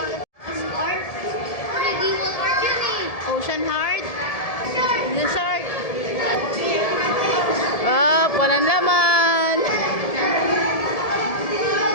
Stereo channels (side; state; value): right; late; 1.7 ms